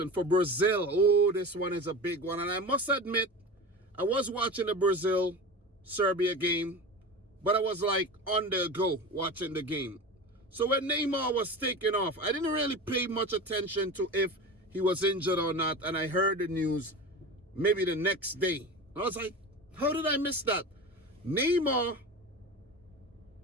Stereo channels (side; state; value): both; normal; correlation 0.29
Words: for Brazil. Oh, this one is a big one. And I must admit, I was watching the Brazil-Serbia game, but I was like on the go watching the game. So when Neymar was taken off, I didn't really pay much attention to if he was injured or not. And I heard the news maybe the next day. I was like, how did I miss that? Neymar